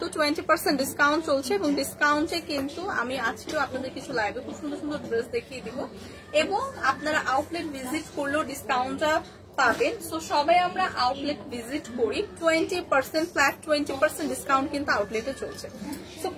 20% ডিসকাউন্ট চলছে এবং ডিসকাউন্টে কিন্তু আমি আজকেও আপনাদের কিছু লাইভে খুব সুন্দর সুন্দর ড্রেস দেখিয়ে দিব এবং আপনারা আউটলেট ভিজিট করলেও ডিসকাউন্টটা পাবেন। সো সবাই আমরা আউটলেট ভিজিট করি, 20% ফ্ল্যাট 20% ডিসকাউন্ট কিন্তু আউটলেটে চলছে। সো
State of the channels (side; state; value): both; identical; correlation 1.00